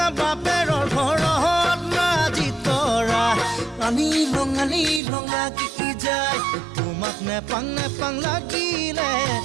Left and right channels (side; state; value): left; drops out; at 5.0 s